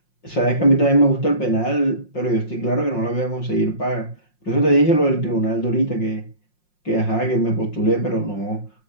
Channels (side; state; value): right; late; 5.6 ms